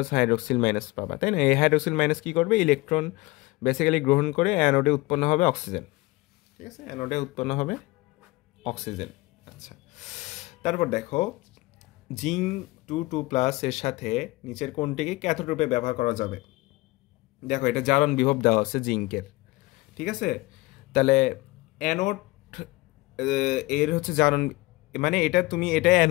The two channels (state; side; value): quieter; right; 21.5 dB